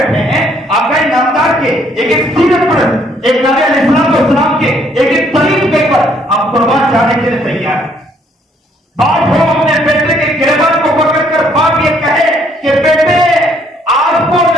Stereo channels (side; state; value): both; normal; correlation 0.66